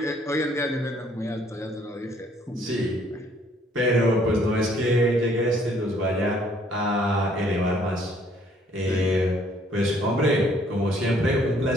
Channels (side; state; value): both; normal; correlation 0.63